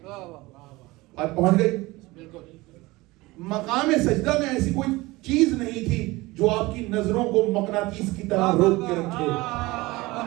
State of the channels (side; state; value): left; quieter; 21.0 dB